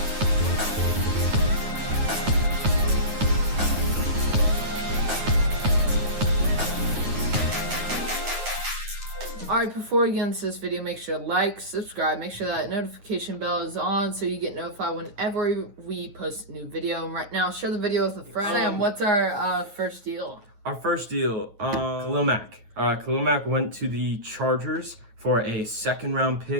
Alright, before we get into this video, make sure to like, subscribe, make sure that notification bell is on so you get notified whenever we post a new video. And right now, share the video with a friend. Sam, what's our first deal? Our first deal, Khalil Mack. Khalil Mack went to the Chargers for a 2nd-round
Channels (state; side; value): late; left; 9.5 ms